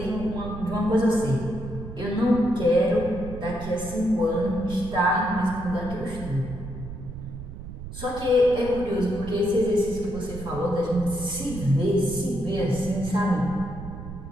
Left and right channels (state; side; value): noise; right; rumble, 11 dB below the sound